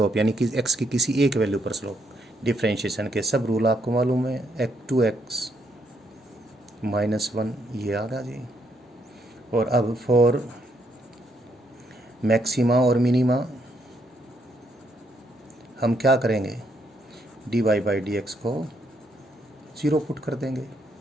यानी कि x की किसी एक वैल्यू पर स्लोप। डिफ्रेंशिएशन के सब रूल आपको मालूम है, x2x -1 ये आ गया जी। और अब फॉर मैक्सिमा और मिनिमा हम क्या करेंगे, dy बाई डी एक्स को 0 पुट कर देंगे,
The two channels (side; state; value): both; normal; correlation 0.74